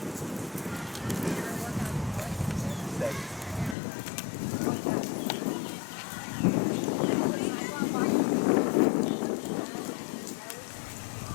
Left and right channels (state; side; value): drops out; right; at 3.8 s